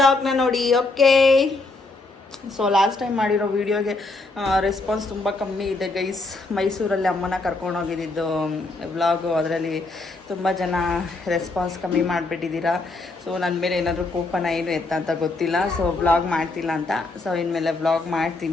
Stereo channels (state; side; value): quieter; right; 3.2 dB